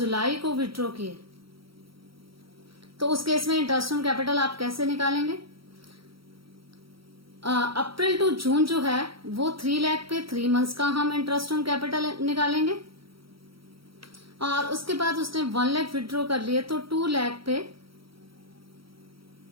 को विड्रॉ किए, तो उस केस में इंटरेस्ट ऑन कैपिटल आप कैसे निकालेंगे? अप्रैल टू जून जो है वो 3 लाख पे 3 मंथ्स का हम इंटरेस्ट ऑन कैपिटल निकालेंगे और उसके बाद उसने 1 लाख विड्रॉ कर लिए तो 2 लाख पे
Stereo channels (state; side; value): late; left; 0.75 ms